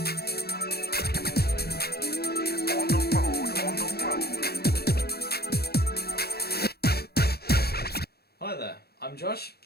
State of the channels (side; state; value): right; late; 0.46 ms